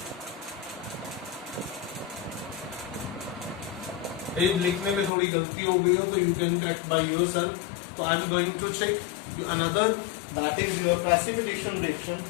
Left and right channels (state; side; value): drops out; right; at 5.1 s